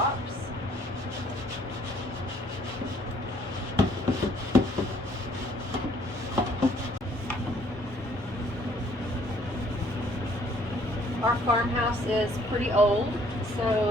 Our farmhouse is pretty old,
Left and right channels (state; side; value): normal; both; correlation 0.62